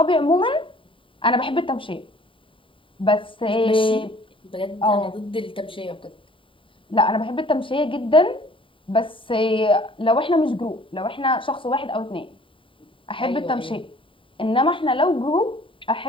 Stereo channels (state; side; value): late; right; 0.25 ms